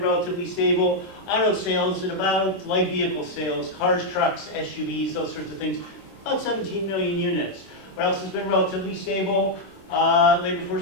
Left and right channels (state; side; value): late; right; 26 ms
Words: relatively stable? Auto sales at about, light vehicle sales, cars, trucks, SUVs, those sorts of things, about 17 million units. What else has been relatively stable? Labor force